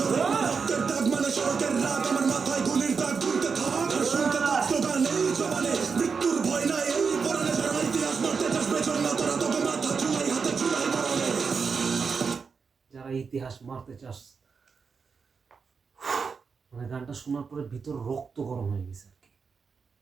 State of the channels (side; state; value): left; quieter; 5.4 dB